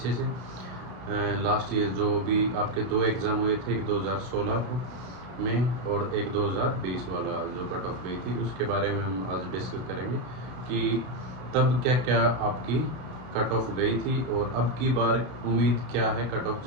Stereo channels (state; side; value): late; left; 32 ms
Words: से। लास्ट ईयर जो भी आपके दो एग्ज़ाम हुए थे, एक 2016 में और एक 2020 वाला जो कट ऑफ गई थी, उसके बारे में हम आज डिस्कस करेंगे कि तब क्या क्या आपकी कट ऑफ गई थी और अब की बार उम्मीद क्या है कट ऑफ